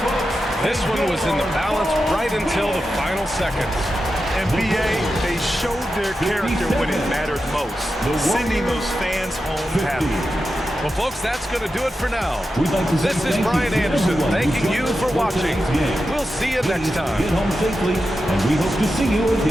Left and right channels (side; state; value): both; normal; correlation 0.90